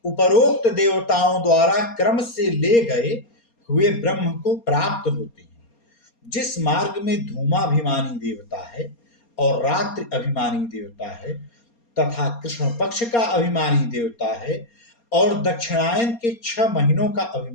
उपरोक्त देवताओं द्वारा क्रम से ले गए हुए ब्रह्म को प्राप्त होते हैं। जिस मार्ग में धूमाभिमानी देवता है और रात्रि अभिमानी देवता है तथा कृष्ण पक्ष का अभिमानी देवता है और दक्षिणायन के 6 महीनों का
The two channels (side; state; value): right; late; 4.3 ms